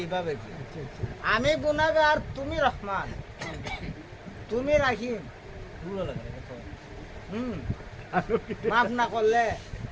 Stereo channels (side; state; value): both; identical; correlation 1.00